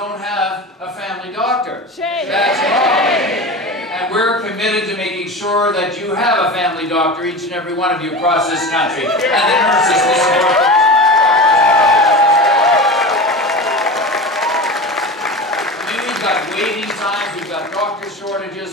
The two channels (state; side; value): normal; both; correlation 0.29